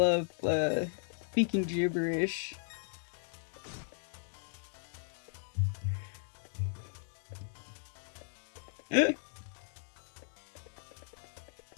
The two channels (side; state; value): right; silent; digital silence